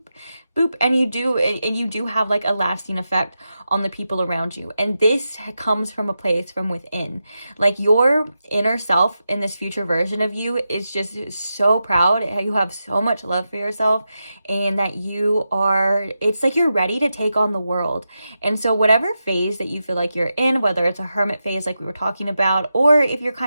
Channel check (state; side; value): inverted; both; correlation -0.89